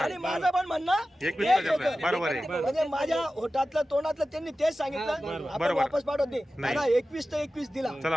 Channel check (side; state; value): both; normal; correlation 0.94